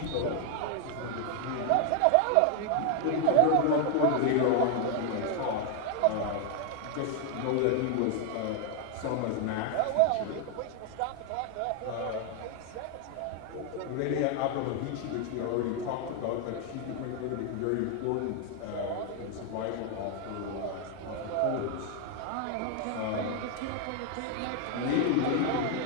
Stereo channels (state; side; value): different; both; correlation 0.00